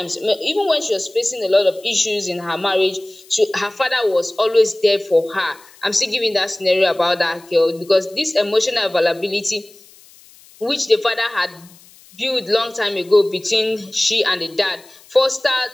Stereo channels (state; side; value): noise; left; hiss, 25 dB below the sound